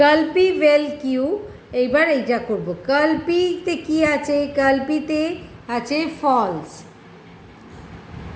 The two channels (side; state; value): both; identical; correlation 1.00